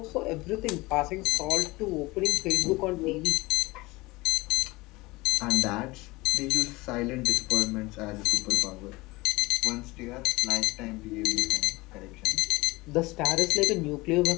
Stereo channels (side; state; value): right; quieter; 22.0 dB